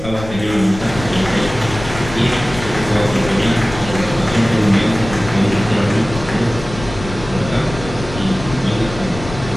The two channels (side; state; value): left; noise; rumble, 11 dB below the sound